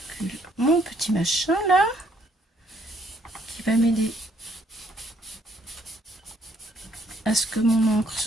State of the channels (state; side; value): normal; both; correlation 0.67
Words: mon petit machin là. Qui va m'aider à ce que mon encre